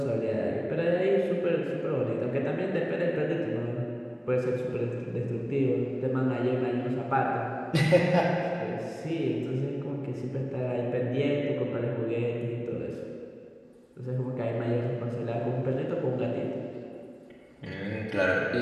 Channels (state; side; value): identical; both; correlation 1.00